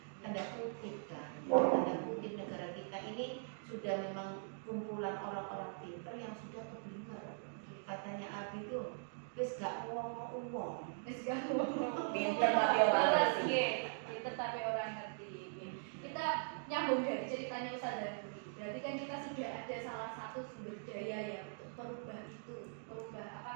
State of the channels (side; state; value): left; silent; digital silence